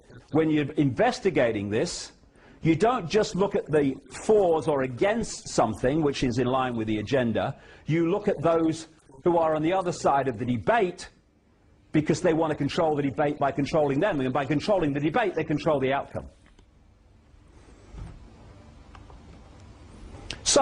when you're investigating this, you don't just look at the fors or against something which is in line with the agenda. You look at those who are on the other side of the debate because they want to control the debate by controlling them, and by controlling the debate they control the outcome.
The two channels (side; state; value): both; identical; correlation 1.00